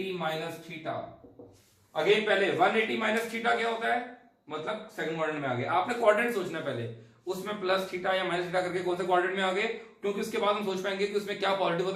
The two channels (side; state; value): both; identical; correlation 1.00